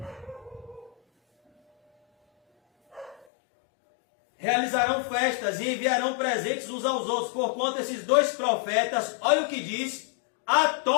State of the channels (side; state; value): right; drops out; at 3.2 s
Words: Realizarão festas e enviarão presentes uns aos outros, porquanto esses dois profetas, olha o que diz,